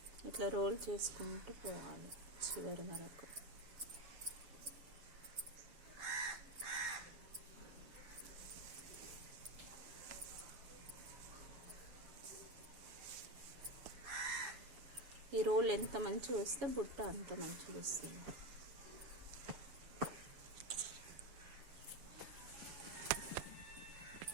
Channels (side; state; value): left; late; 7.2 ms